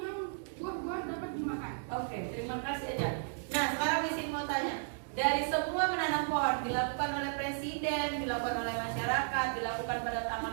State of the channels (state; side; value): silent; left; digital silence